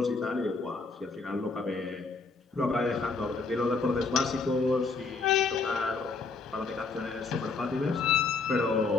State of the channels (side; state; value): right; quieter; 4.1 dB